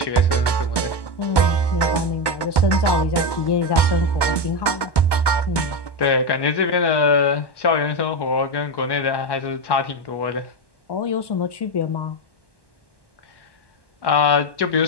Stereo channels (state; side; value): late; right; 1.1 ms